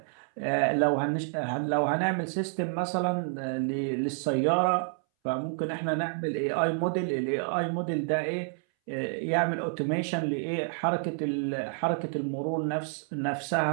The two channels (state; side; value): silent; left; 59 dB below the other